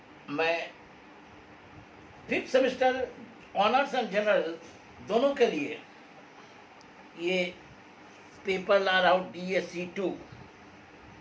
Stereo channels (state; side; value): identical; both; correlation 1.00